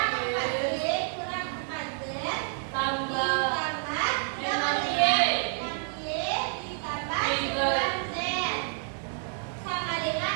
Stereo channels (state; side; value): silent; left; 59 dB below the other